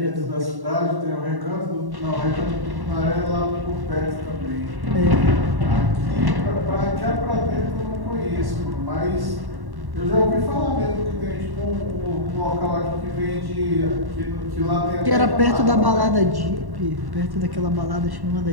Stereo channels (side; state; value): left; late; 1.1 ms